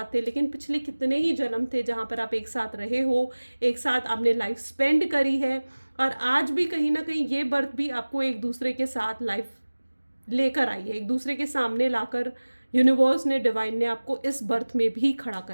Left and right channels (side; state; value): both; inverted; correlation -1.00